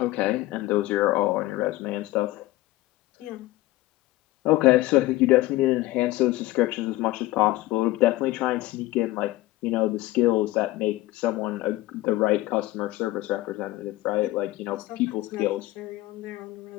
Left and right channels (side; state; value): right; quieter; 17.7 dB